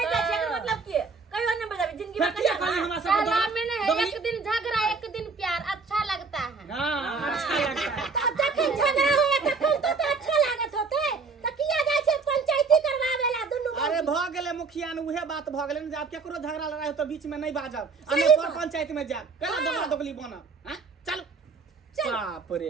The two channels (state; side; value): quieter; left; 4.6 dB